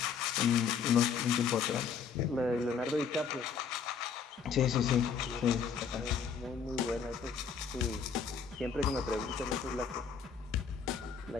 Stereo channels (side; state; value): right; quieter; 6.4 dB